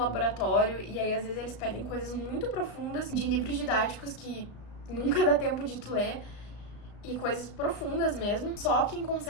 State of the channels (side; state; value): right; late; 35 ms